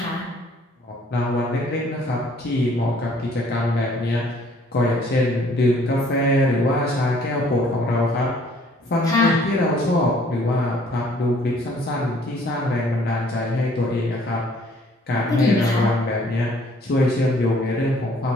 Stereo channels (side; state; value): both; normal; correlation 0.59